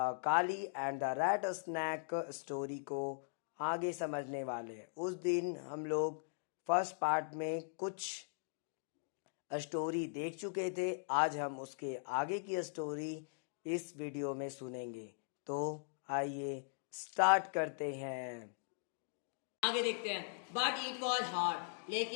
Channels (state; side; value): silent; right; digital silence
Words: and the rat snake story को आगे समझने वाले हैं। उस दिन हम लोग फर्स्ट पार्ट में कुछ स्टोरी देख चुके थे। आज हम उसके आगे की स्टोरी इस वीडियो में सुनेंगे। तो आइए स्टार्ट करते हैं। आगे देखते हैं। बट इट वॉज हार्ड,